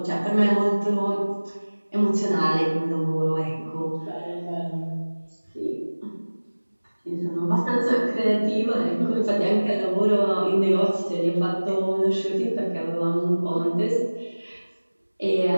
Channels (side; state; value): both; inverted; correlation -1.00